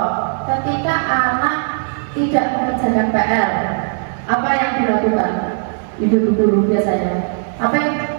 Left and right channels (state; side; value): silent; left; 57 dB below the other